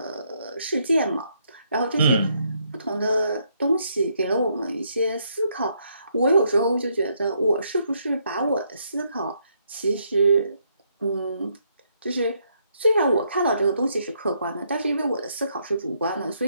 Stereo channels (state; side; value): inverted; both; correlation -0.74